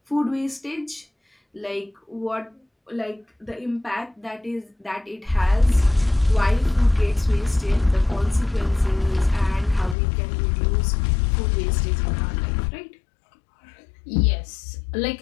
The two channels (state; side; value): drops out; right; at 10.0 s